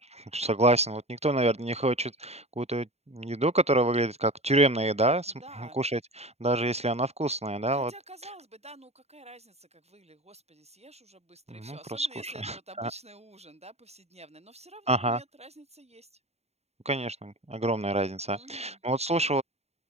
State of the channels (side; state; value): left; late; 0.31 ms